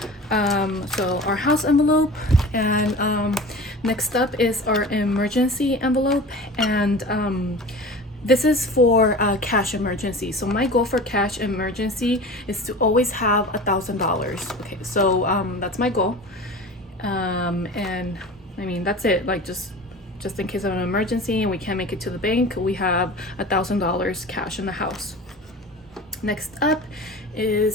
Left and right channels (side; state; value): both; normal; correlation 0.36